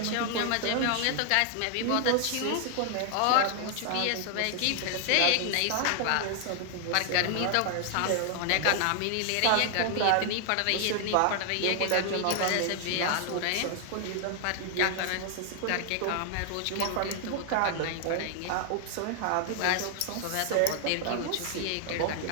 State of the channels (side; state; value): both; different; correlation 0.00